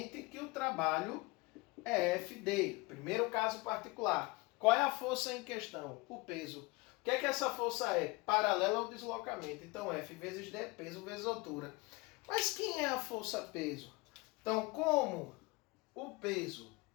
que o trabalho é FD. Primeiro caso particular. Qual é a força em questão? O peso. O que é que essa força é? Paralela ao deslocamento. Então, F vezes D, peso vezes altura. Mas quem é a força-peso? Então, como o peso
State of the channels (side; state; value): right; quieter; 24.5 dB